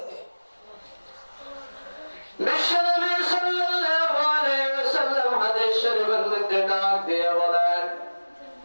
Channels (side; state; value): both; inverted; correlation -1.00